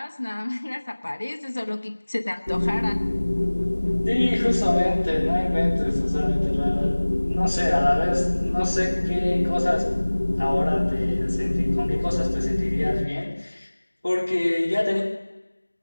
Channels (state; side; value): inverted; both; correlation -1.00